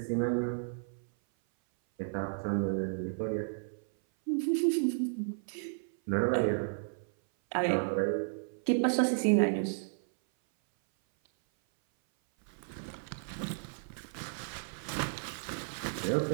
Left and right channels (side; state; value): left; silent; 56 dB below the other